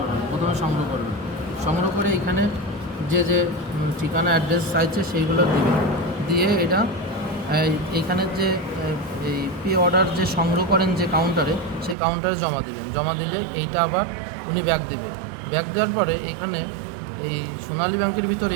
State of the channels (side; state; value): left; drops out; at 12.0 s